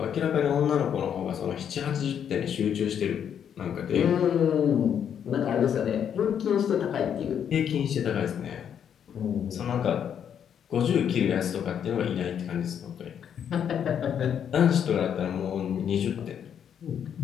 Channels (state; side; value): quieter; right; 8.6 dB